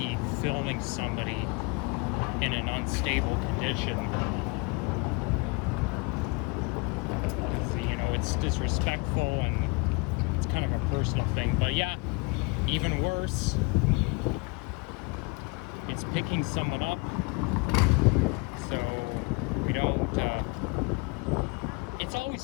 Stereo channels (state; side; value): quieter; right; 29.1 dB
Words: filming somebody in an unstable condition. Because, you know, it's disrespectful and it's kind of a personal thing. But yeah, even worse, it's picking someone up, so we don't, it's